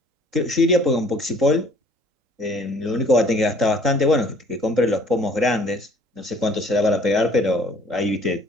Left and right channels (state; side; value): late; left; 3.8 ms